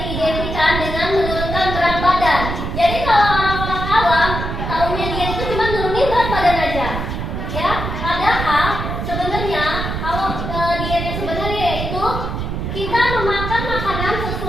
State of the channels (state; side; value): noise; right; rumble, 4 dB below the sound